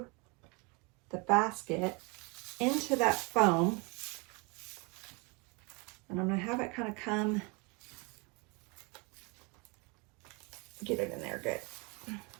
the basket into that foam. And I'm going to have it kind of come, get it in there good.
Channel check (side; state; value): left; quieter; 29.7 dB